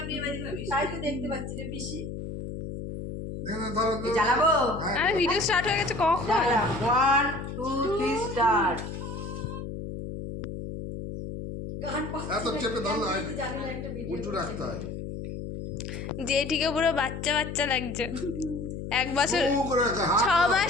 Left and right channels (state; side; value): noise; left; hum, 7 dB below the sound